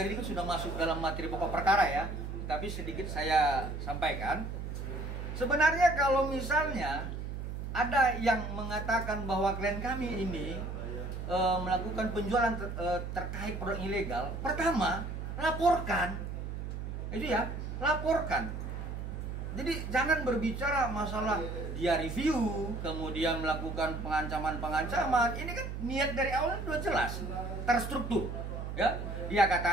ini kan sudah masuk dalam materi pokok perkara ya, tapi sedikit saya sampaikan. Sebenarnya kalau misalnya ada yang mengatakan bahwa klien kami ini melakukan penjualan terkait produk ilegal, pertama laporkan, itu ya, laporkan. Jadi jangan berbicara masalah dia review, kemudian melakukan pengancaman. Ini kan niat dari awal sudah jelas, terstruktur. Ya, dia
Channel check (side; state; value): right; noise; hum, 6 dB below the sound